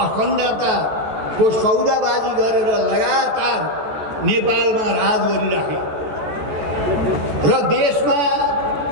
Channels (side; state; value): left; late; 14 ms